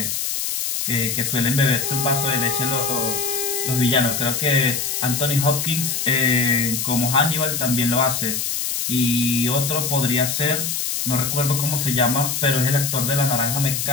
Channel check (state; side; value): noise; left; hiss, 1 dB below the sound